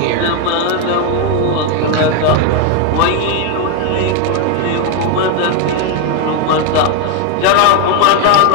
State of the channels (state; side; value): different; both; correlation 0.01